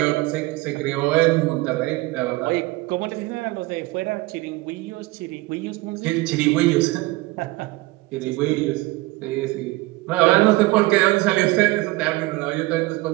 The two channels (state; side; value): quieter; left; 20.9 dB